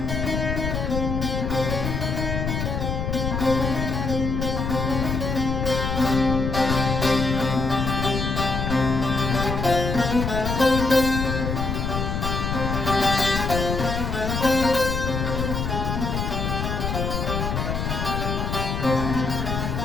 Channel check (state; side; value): noise; left; rumble, 2 dB below the sound